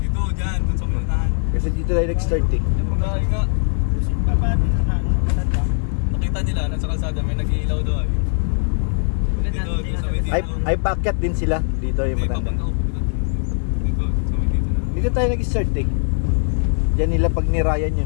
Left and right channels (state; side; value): silent; right; digital silence